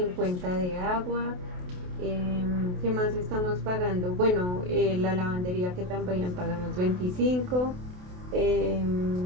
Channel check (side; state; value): left; late; 28 ms